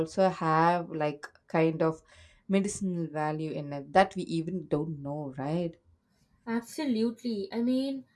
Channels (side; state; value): both; identical; correlation 1.00